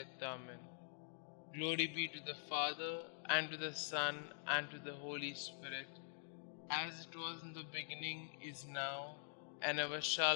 Amen. Glory be to the Father, and to the Son, and to the Holy Spirit, as it was in the beginning, is now, and ever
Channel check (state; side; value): silent; right; digital silence